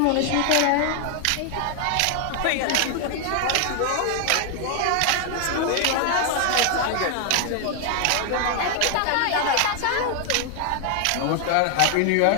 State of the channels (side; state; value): both; different; correlation 0.00